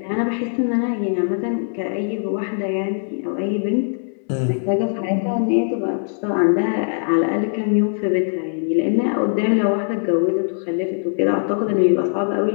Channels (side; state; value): right; silent; digital silence